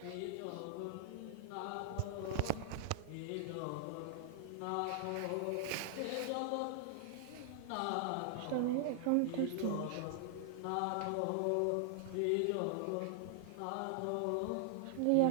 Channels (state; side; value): different; both; correlation 0.00